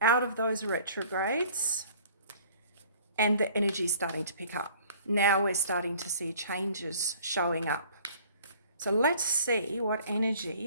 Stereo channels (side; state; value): both; inverted; correlation -0.52